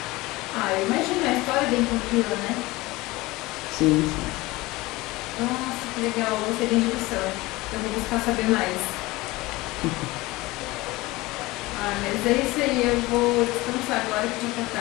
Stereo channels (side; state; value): right; quieter; 20.7 dB